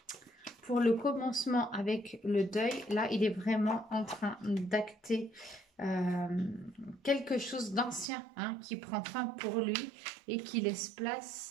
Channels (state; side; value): drops out; left; at 8.1 s